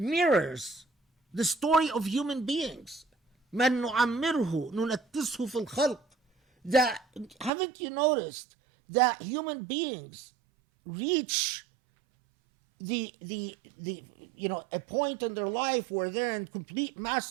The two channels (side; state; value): left; drops out; at 7.5 s